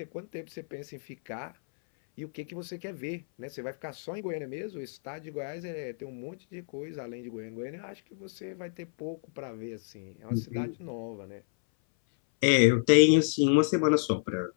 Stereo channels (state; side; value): silent; right; 58 dB below the other